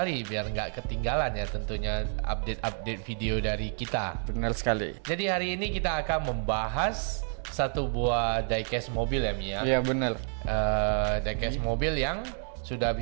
biar nggak ketinggalan ya tentunya update-update video dari kita. Benar sekali. Jadi hari ini kita akan membahas satu buah diecast mobil ya Mia. Iya benar. Diecast mobil yang sudah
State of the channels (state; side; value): silent; left; 58 dB below the other